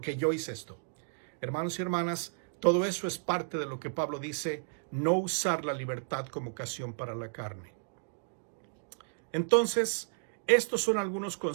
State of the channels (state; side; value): silent; left; digital silence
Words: yo hice esto. Hermanos y hermanas, todo eso es parte de lo que Pablo dice, no usar la libertad como ocasión para la carne. Entonces, estos son algunos